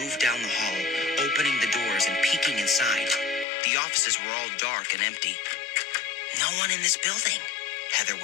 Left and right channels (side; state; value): right; drops out; at 3.5 s